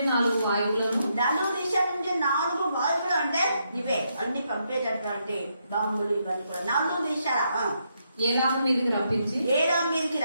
4 వాయువులను 4 దిశల నుంచి 4 వాయువులు అంటే ఇవే అన్ని పంపేటటువంటి బాంబులు ఇవన్నీ కూడా 4 దిశల ఏలాము మీదకి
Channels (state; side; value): inverted; both; correlation -0.78